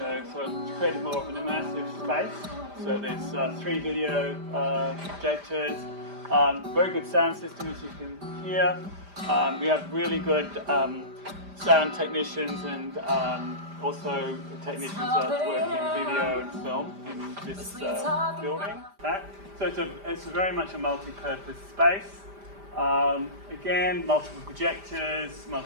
it's created more of an immersive space. So there's 3 video projectors, very good sound system as you can hear. We have really good sound technicians and also technicians that work in video and film in this building. So it's very much a multi-purpose space. Again, multiple projectors,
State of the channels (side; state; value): left; late; 5.0 ms